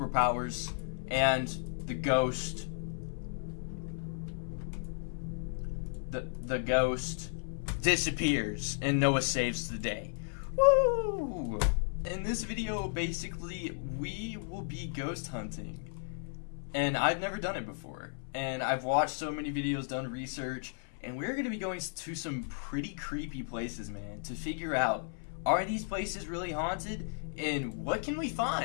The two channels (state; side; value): silent; right; 55 dB below the other